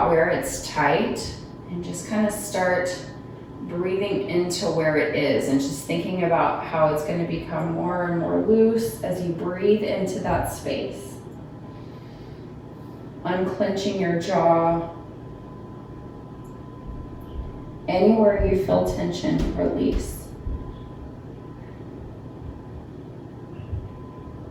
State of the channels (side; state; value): both; identical; correlation 1.00